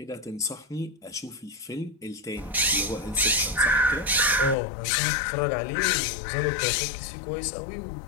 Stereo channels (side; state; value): right; drops out; at 4.5 s